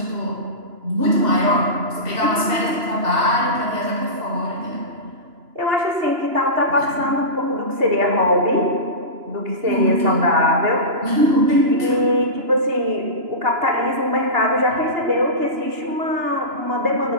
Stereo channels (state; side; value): late; left; 2.9 ms